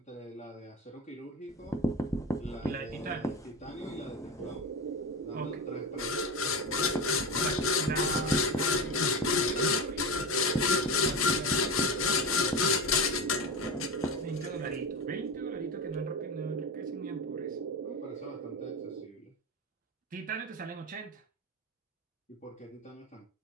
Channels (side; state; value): both; normal; correlation 0.21